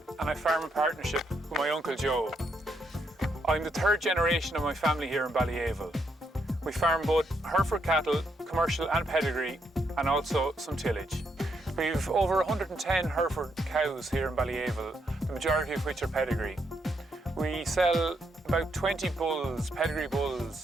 and I farm in partnership with my uncle Joe. I'm the third generation of my family here in Ballyaville. We farm both Hereford cattle, commercial and pedigree, and also some tillage. We've over 110 Hereford cows here in Ballyaville, the majority of which are pedigree. We sell about 20 bulls, pedigree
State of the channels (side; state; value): both; normal; correlation 0.77